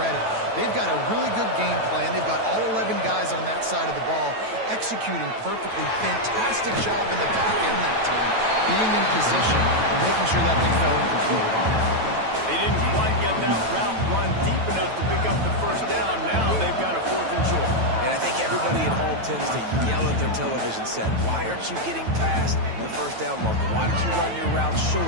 They've got a really good game plan. They've got all 11 guys on that side of the ball executing perfectly. Fantastic job in the back end that time, being in position and making sure that thing fell incomplete. They didn't quite get that route run deep enough to pick up the 1st down. Now they've got a 4th and short. And I think everybody at home tends to yell at their television set, why aren't you getting past the 1st down marker? Why did you run your route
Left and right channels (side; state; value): left; late; 9.1 ms